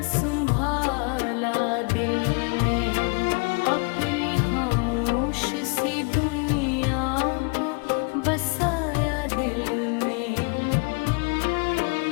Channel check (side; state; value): right; quieter; 31.7 dB